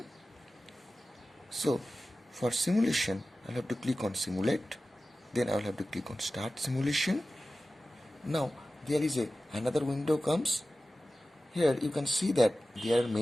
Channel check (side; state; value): both; normal; correlation 0.95